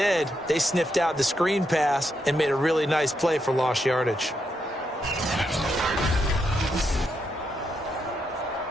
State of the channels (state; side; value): normal; both; correlation 0.81